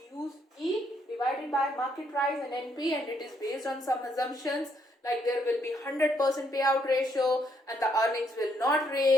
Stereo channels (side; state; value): both; normal; correlation 0.73